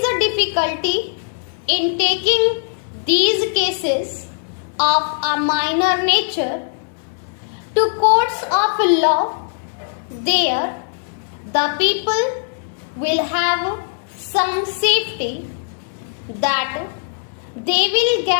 the difficulty in taking these cases of a minor nature to courts of law? There, the people will have some safety that they will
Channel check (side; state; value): right; silent; 66 dB below the other